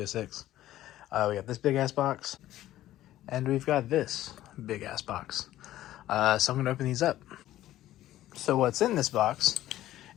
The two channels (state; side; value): quieter; right; 14.0 dB